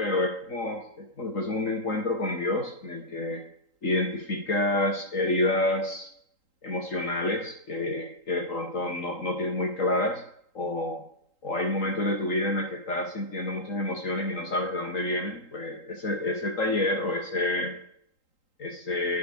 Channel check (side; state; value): right; late; 3.8 ms